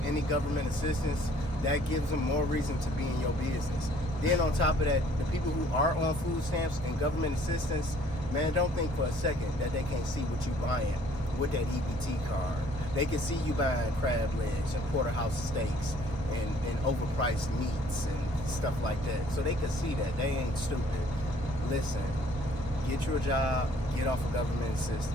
government assistance, that gives them more reason to be in your business. Then on top of that, the people who are on food stamps and government assistance, man, don't think for a second that they can't see what you're buying with that EBT card. They can see you buying crab legs and porterhouse steaks and overpriced meats and stuff like that. So they can see that. They ain't stupid. Listen, get you a job, get off of government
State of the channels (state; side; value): normal; both; correlation 0.58